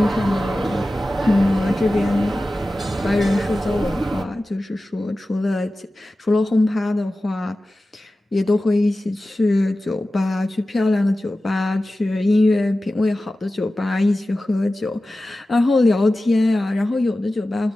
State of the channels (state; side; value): normal; both; correlation 0.95